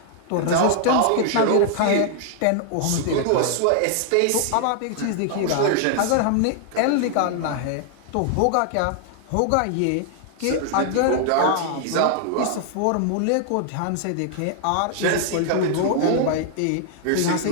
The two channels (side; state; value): both; different; correlation 0.00